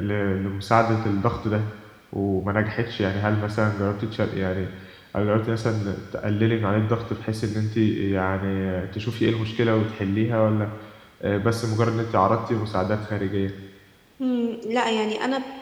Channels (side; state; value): both; identical; correlation 1.00